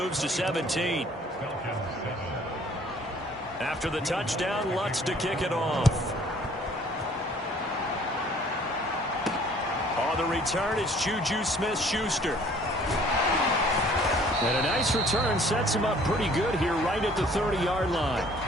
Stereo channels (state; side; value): normal; both; correlation 0.56